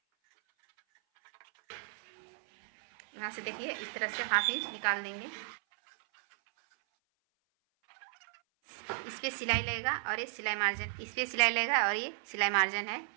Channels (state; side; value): silent; left; 55 dB below the other